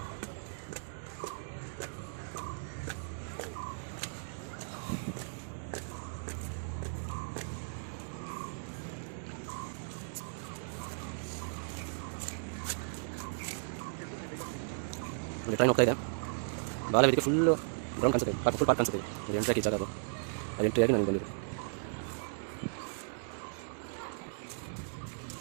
ಟ್ರೈನ್ ಹೋಗ್ತಾ ಇದೆ. ಬಾಲವೇದಿಕೆ ಫುಲ್ಲು ಗ್ರೌಂಡ್ ಕಾಣಿಸುತ್ತೆ, ಫುಲ್ ಪಾರ್ಕ್ ಕಾಣಿಸುತ್ತೆ. ಅದು ಎಂಟ್ರಿ ಜಾಗ ಅದು ಎಂಟ್ರಿಯಾಗಿ ನನಗೆ ಬಂದಿದೆ.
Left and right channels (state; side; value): silent; left; digital silence